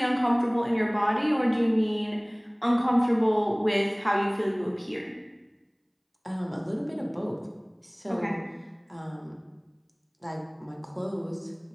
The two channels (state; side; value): identical; both; correlation 1.00